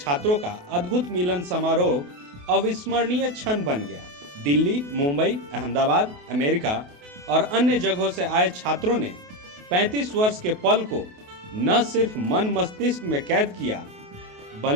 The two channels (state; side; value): late; left; 28 ms